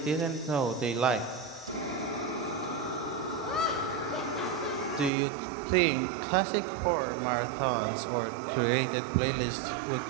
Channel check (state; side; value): drops out; left; at 5.1 s